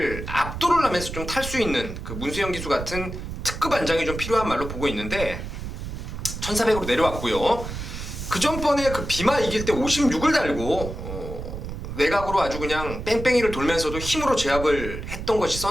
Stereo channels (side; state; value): right; noise; rumble, 7 dB below the sound